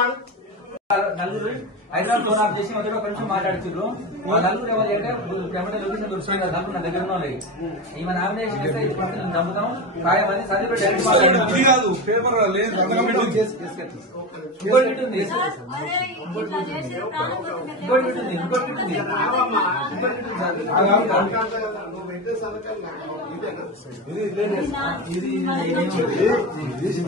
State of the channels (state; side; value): normal; both; correlation 0.20